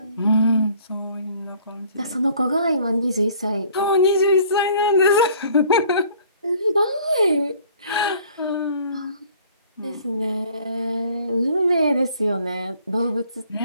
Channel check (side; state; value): both; inverted; correlation -0.55